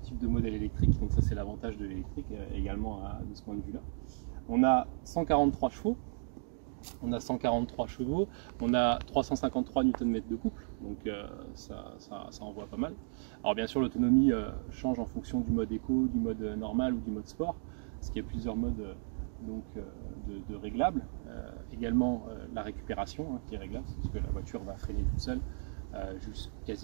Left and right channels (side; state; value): left; silent; digital silence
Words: de modèle électrique. Donc, ça, c'est l'avantage de l'électrique également de ce point de vue-là. On a 143 chevaux. On a 143 chevaux, on a 353 Nm de couple, donc ça envoie pas mal. Alors bien sûr l'autonomie change en fonction du mode éco, du mode normal ou du mode sport, parce qu'il y a plusieurs modes de réglables. Également la récupération qui est réglable, parce que la voiture va freiner toute seule